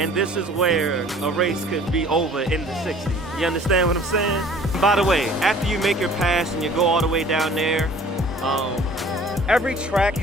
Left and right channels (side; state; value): both; normal; correlation 0.50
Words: this is where a race could be over in the 60s. You understand what I'm saying? By the way, after you make your pass and you go all the way down there, every track